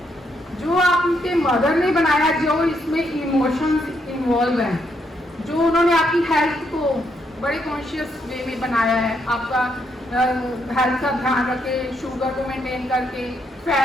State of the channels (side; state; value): both; normal; correlation 0.76